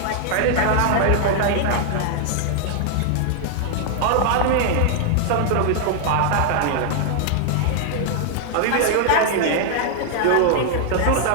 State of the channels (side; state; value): both; different; correlation 0.00